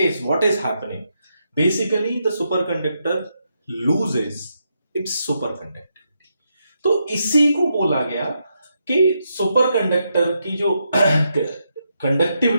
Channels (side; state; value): both; inverted; correlation -0.81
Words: what is happening? Basically the super conductor loses it's super conductivity. तो इसी को बोला गया कि सुपर कंडक्टर की जो